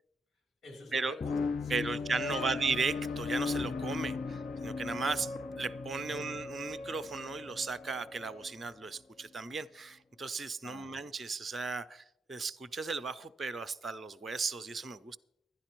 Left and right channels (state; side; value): normal; both; correlation 0.78